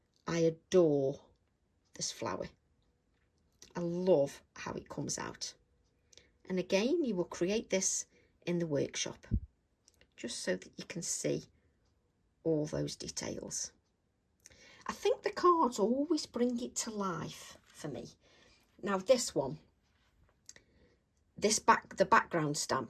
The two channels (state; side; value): identical; both; correlation 1.00